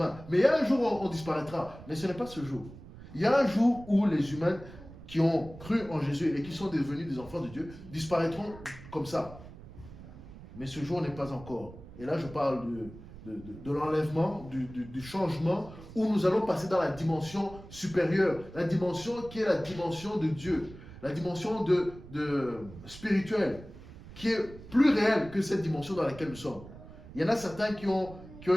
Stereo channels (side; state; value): right; noise; rumble, 16 dB below the sound